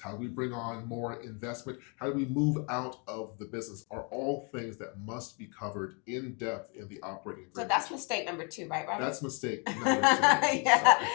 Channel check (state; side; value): quieter; right; 34.9 dB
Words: do we bring on more investment? How do we move out of the business? Are all things that must be covered in depth in the operating agreement. So that's mistake number 2, right, Robert? That's mistake number 2. Yeah,